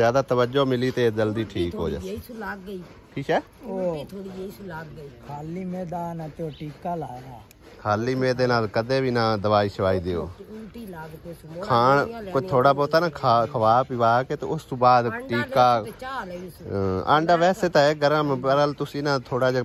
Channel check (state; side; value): identical; both; correlation 1.00